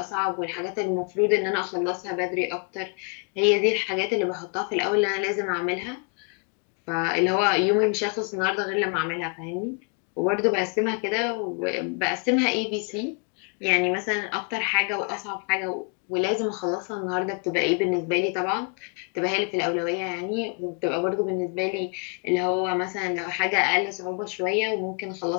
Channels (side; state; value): right; quieter; 37.1 dB